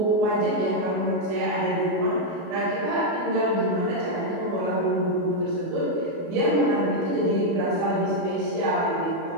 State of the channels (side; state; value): left; late; 24 ms